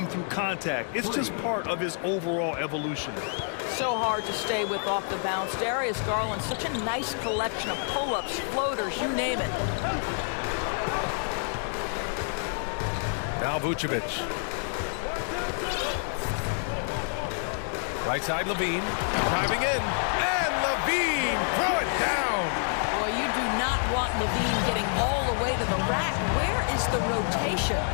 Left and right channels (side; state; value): right; silent; 55 dB below the other